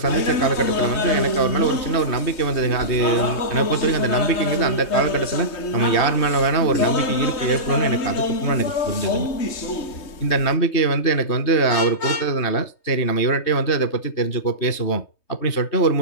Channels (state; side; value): late; right; 3.2 ms